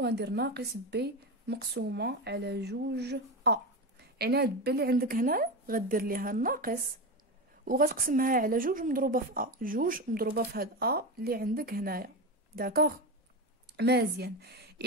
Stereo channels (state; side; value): normal; both; correlation 0.19